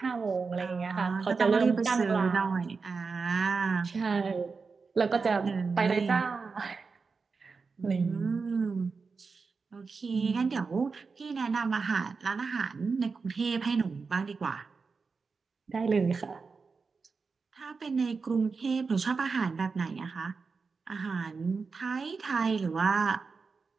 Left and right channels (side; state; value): left; quieter; 4.7 dB